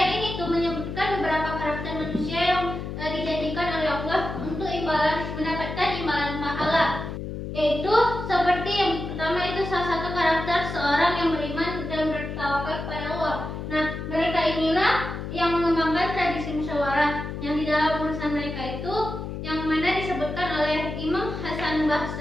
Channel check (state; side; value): noise; left; hum, 6 dB below the sound